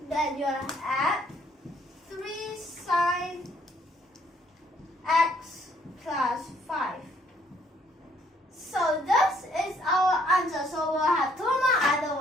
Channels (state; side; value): normal; both; correlation 0.66